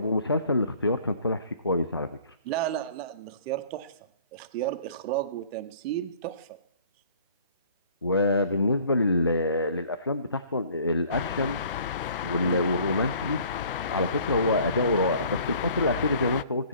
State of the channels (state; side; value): inverted; both; correlation -0.53